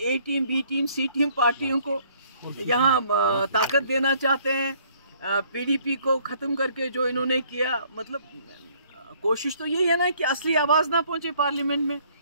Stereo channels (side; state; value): both; inverted; correlation -0.62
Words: टीम, बी टीम, सी टीम पार्टियों को यहाँ ताकत देना चाहते हैं, पीडीपी को खत्म करके जो इन्होंने किया, मतलब कोशिश तो यही है ना कि असली आवाज ना पहुंचे पार्लियामेंट में।